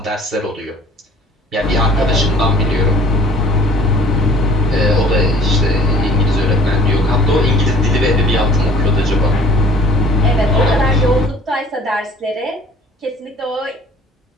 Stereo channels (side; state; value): both; normal; correlation 0.52